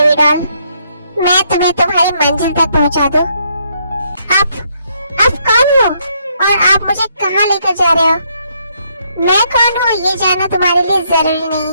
डॉल, मैं तुम्हें तुम्हारी मंजिल तक पहुंचा दूं। आप कौन हो और आप मुझे कहाँ लेकर जा रहे हो? मैं कौन हूँ ये जानना तुम्हारे लिए जरूरी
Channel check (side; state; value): both; inverted; correlation -0.72